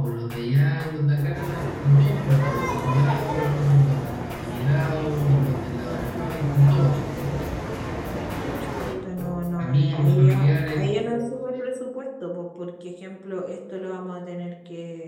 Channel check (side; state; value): both; identical; correlation 1.00